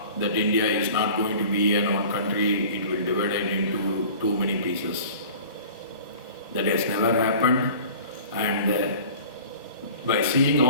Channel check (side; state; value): both; inverted; correlation -0.43